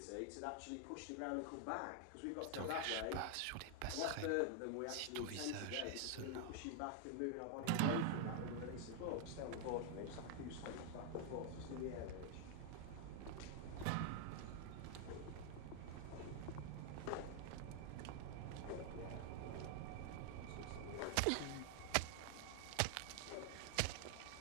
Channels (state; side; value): different; both; correlation 0.00